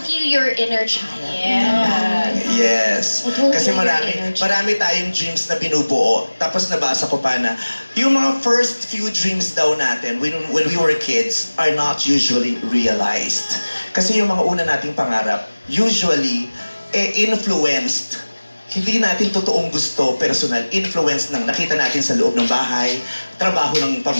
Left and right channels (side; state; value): both; inverted; correlation -1.00